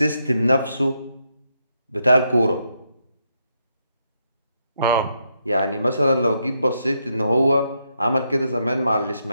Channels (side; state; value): both; inverted; correlation -0.79